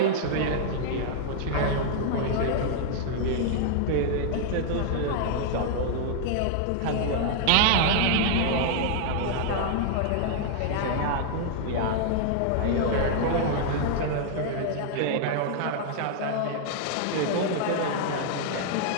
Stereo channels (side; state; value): both; different; correlation -0.01